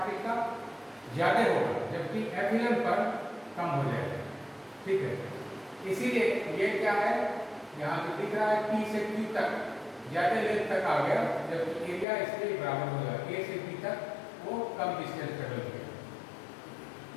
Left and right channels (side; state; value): right; drops out; at 12.1 s